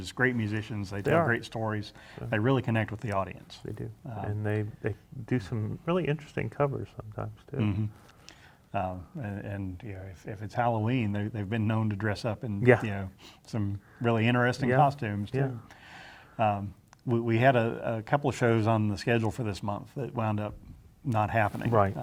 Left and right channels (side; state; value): both; identical; correlation 1.00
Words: great musicians. They tell are. great stories. They really connect with the audience. They do, and they do some really interesting covers sometimes too. Mm-hmm. If it's Halloween, they've been known to dress up in some really interesting costumes too. We had a couple of shows on the schedule for this month that wound up not happening. Right.